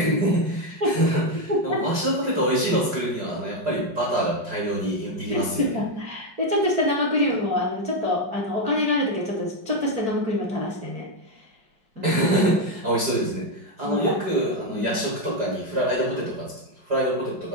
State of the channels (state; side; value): late; left; 4.9 ms